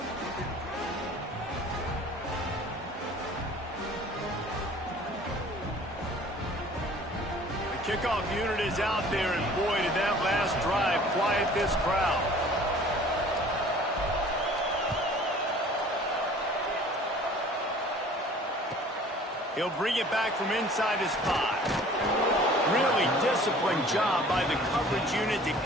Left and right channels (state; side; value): normal; both; correlation 0.49